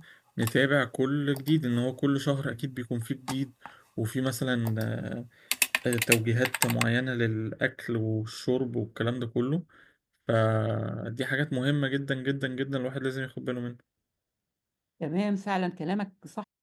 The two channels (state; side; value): identical; both; correlation 1.00